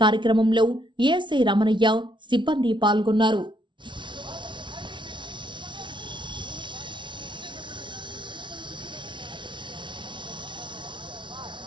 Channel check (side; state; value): left; late; 0.24 ms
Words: కార్యక్రమంలో ఏఎస్ఐ రమణయ్య, సిబ్బంది పాల్గొన్నారు.